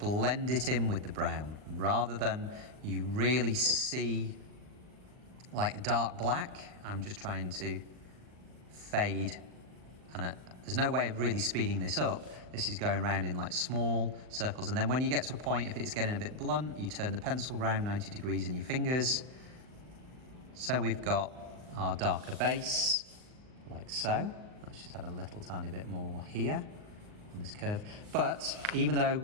it in with the brown rather than you really see like a dark black. I'm just trying to fade, and there's no way of really speeding this up. This is going around in like small circles, and then when you get to a point, if it's getting a bit blunt, you turn the pencil round 90 degrees in your fingers. So we've got our darker base, like so. Let's just add a little tiny bit more here on this curve. But even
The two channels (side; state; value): left; late; 39 ms